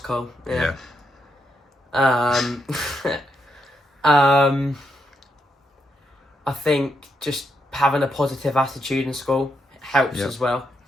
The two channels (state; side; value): normal; both; correlation 0.81